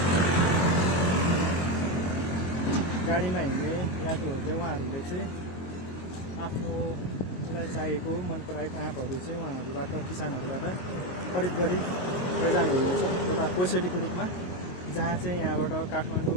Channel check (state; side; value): late; right; 22 ms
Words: गाडीमा हिँड्ने यात्रुहरूले उहाँहरूले चाहिँ आफ्नोलाई चाहिएको मन पराएको आँपहरू चाहिँ उहाँहरूबाट किसानहरूबाट खरिद गरी लैजानुहुन्छ एउटा कोसेलीको रूपमा, जहाँ चाहिँ यहाँबाट